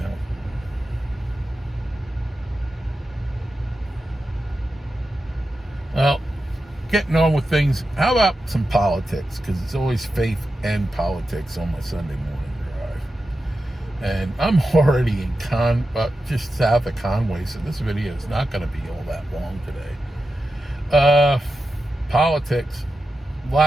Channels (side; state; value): both; normal; correlation 0.91